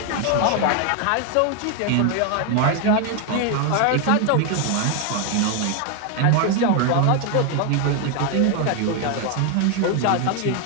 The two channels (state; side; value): different; both; correlation 0.01